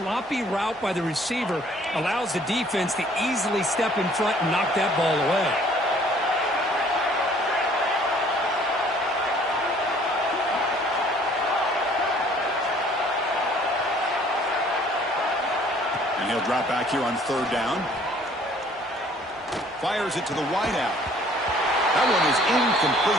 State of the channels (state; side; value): normal; both; correlation 0.57